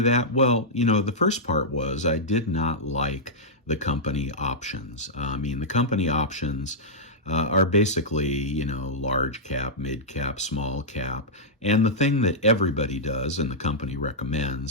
that? Well, the first part was I did not like the company options. The company options are basically, large cap, mid cap, small cap. And the thing that everybody does and the company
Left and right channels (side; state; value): both; normal; correlation -0.10